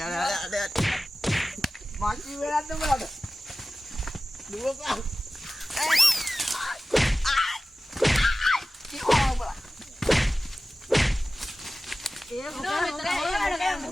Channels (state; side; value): normal; both; correlation 0.95